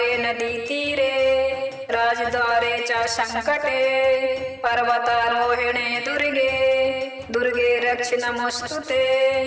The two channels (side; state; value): both; identical; correlation 1.00